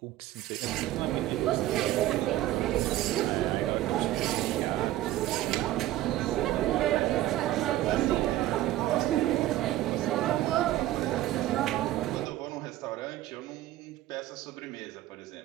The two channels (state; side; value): quieter; left; 14.7 dB